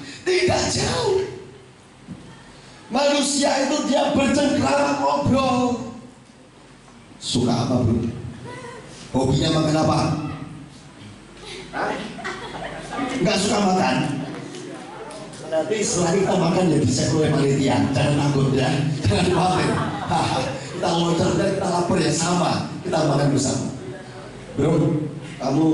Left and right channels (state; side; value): identical; both; correlation 1.00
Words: Tidak jauh. Manusia itu dia bercengkrama, ngobrol. Suka apa bro? Hobinya makan apa? Nggak suka makan? Nanti setelah kita makan ya dicek oleh panitia. Jangan takut ya. Jangan khawatir. Kita loncat dan kita lapar ya sama. Kita makan bersama. Bro,